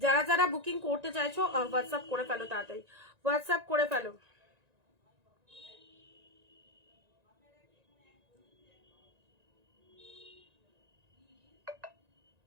যারা যারা বুকিং করতে চাইছো হোয়াটসঅ্যাপ করে ফেলো, তাড়াতাড়ি হোয়াটসঅ্যাপ করে ফেলো।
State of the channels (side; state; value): left; late; 1.9 ms